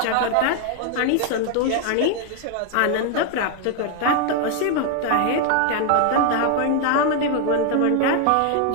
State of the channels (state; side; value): different; both; correlation 0.00